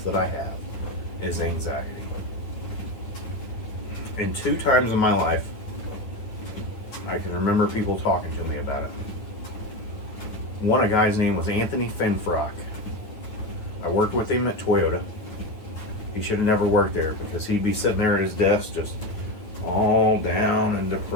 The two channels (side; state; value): right; late; 9.2 ms